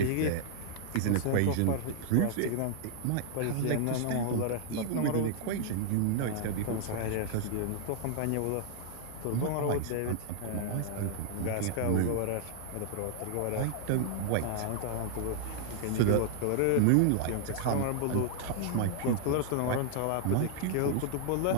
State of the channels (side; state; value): both; different; correlation 0.00